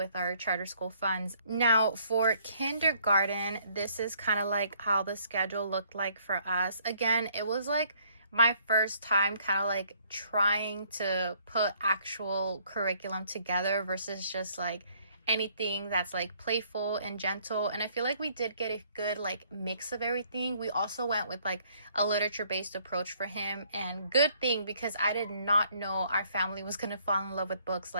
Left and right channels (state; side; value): inverted; both; correlation -0.64